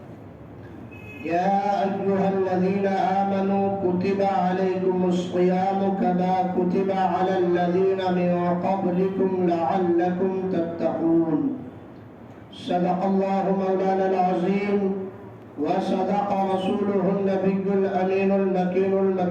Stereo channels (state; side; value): identical; both; correlation 1.00